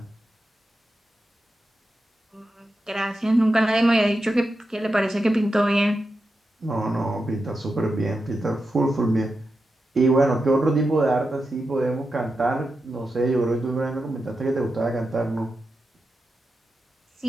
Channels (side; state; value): both; normal; correlation 0.89